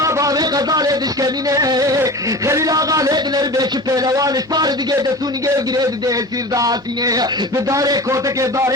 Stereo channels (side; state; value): both; normal; correlation 0.34